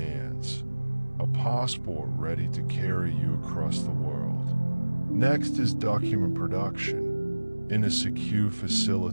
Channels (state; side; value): inverted; both; correlation -1.00